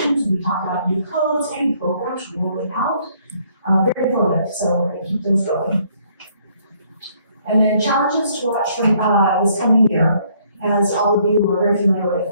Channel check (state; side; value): inverted; both; correlation -0.66